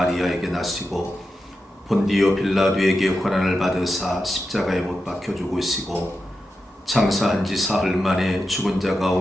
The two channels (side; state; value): both; normal; correlation 0.90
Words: 나시고 본디오 빌라도에게 고난을 받으사 십자가에 못 박혀 죽으시고 장사한 지 사흘 만에 죽은 자